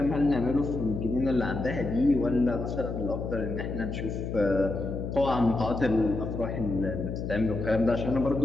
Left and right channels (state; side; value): noise; left; hum, 5 dB below the sound